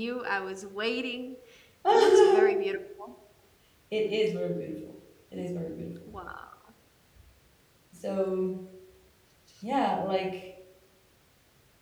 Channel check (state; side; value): identical; both; correlation 1.00